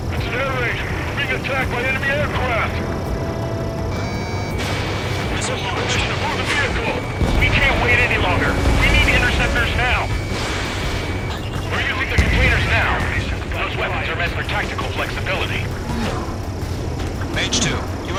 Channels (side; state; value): both; identical; correlation 1.00